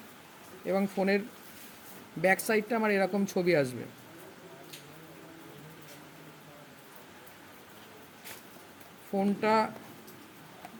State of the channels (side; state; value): both; identical; correlation 1.00